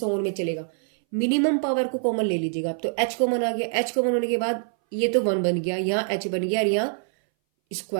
ऑन में चलेगा। मिनिमम पावर को कॉमन ले लीजिएगा आप। तो एच कॉमन आ गया, एच कॉमन होने के बाद ये तो 1 बन गया, यहाँ एच बन गया और यहाँ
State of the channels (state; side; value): silent; left; 60 dB below the other